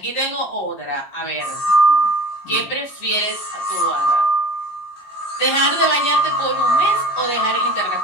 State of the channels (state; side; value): late; right; 21 ms